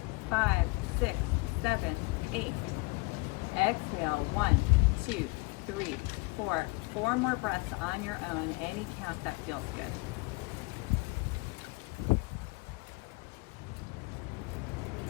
5, 6, 7, 8. Exhale, 1, 2, 3, 4. 4 more breaths on your own, any count that feels good.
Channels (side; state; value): right; quieter; 24.6 dB